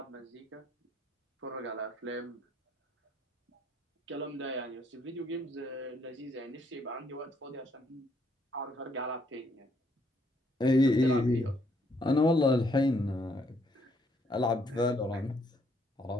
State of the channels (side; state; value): both; normal; correlation 0.70